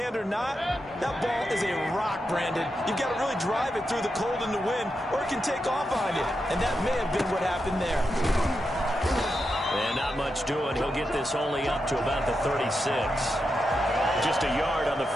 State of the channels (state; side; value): normal; both; correlation 0.87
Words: or not, that ball is a rock, Brandon. You've got to really drive it through the cold and the wind, or it can take off on you, and that may have been what happened there. And not much doing. He'll get this only up to about the 36. Just a yard on the